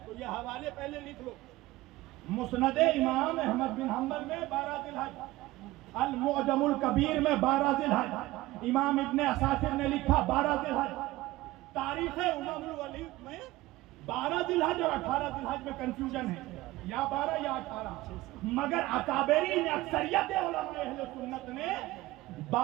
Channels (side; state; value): left; quieter; 18.2 dB